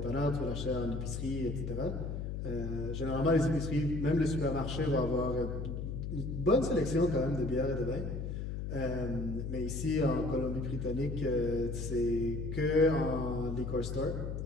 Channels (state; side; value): noise; left; hum, 4 dB below the sound